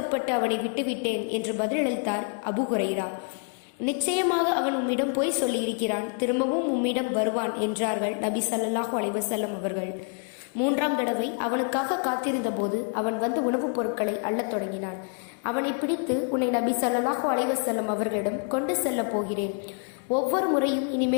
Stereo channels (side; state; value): right; quieter; 38.1 dB